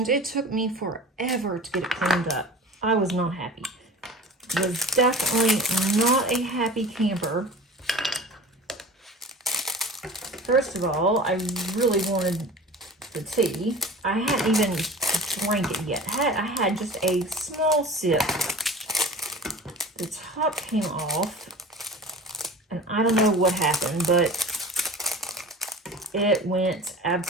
it took me forever to get it cleaned up. I was not happy. Was definitely not a happy camper. First of all, I really wanted the tea. I hadn't even drank it yet. I had just a small sip. The top came off, and I don't know what happened, but it went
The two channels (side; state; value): both; normal; correlation 0.39